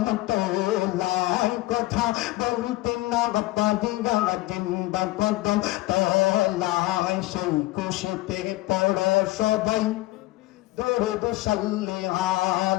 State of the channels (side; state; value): right; quieter; 18.6 dB